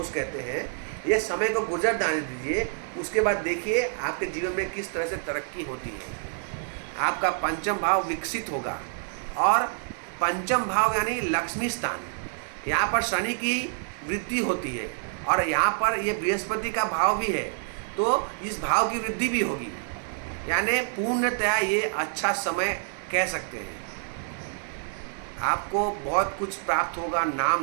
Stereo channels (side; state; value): left; silent; digital silence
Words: कहते हैं, ये समय को गुजर जाने दीजिए। उसके बाद देखिए आपके जीवन में किस तरह से तरक्की होती है। आपका पंचम भाव विकसित होगा, और पंचम भाव यानी लक्ष्मी स्थान, यहाँ पर शनि की वृद्धि होती है, और यहाँ पर ये बृहस्पति का भाव भी है, तो इस भाव की वृद्धि भी होगी। यानी पूर्णतया ये अच्छा समय कह सकते हैं। आपको बहुत कुछ प्राप्त होगा,